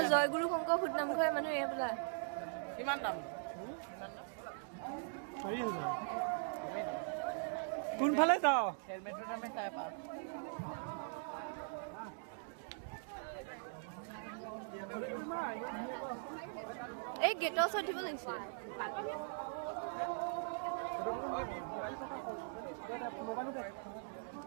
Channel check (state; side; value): silent; left; digital silence